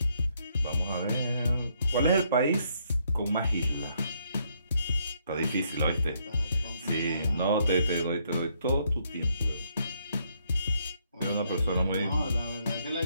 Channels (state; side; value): inverted; both; correlation -0.72